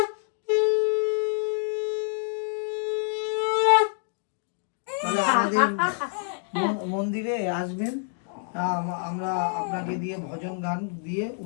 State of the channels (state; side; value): silent; right; 60 dB below the other